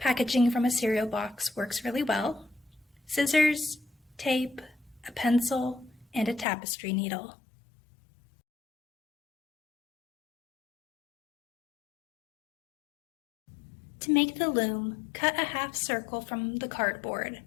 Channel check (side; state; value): right; drops out; at 6.5 s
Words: from a cereal box works really well, scissors, tape, a pencil, and a tapestry needle. To make the loom, cut a half circle from the cardboard.